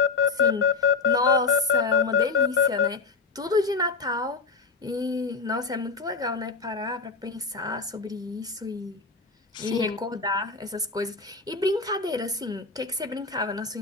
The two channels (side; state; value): right; quieter; 4.5 dB